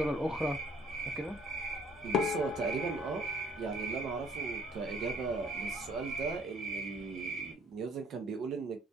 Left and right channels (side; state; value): both; normal; correlation 0.59